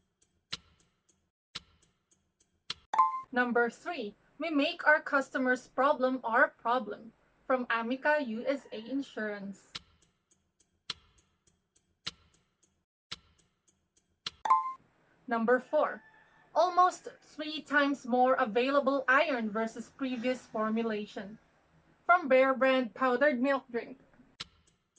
Number 3. We make our customers' problem our problem. From Amica USA Insurance. Number 4. Almost 3 times more available iron versus previous formulation. From Bear Brand powdered milk drink.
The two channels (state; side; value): identical; both; correlation 1.00